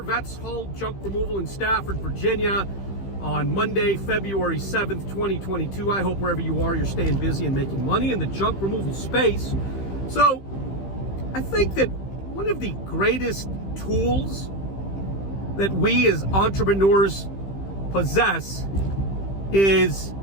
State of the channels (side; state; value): right; late; 15 ms